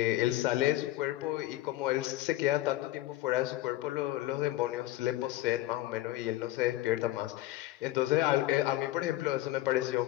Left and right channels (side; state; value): right; quieter; 16.2 dB